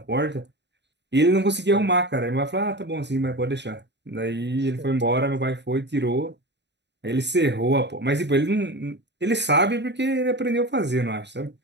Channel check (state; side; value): late; left; 0.51 ms